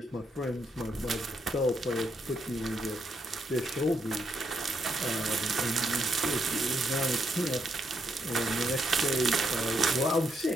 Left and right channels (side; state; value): both; normal; correlation 0.78